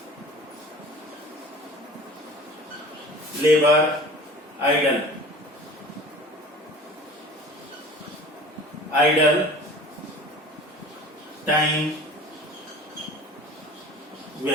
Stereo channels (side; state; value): both; normal; correlation 0.42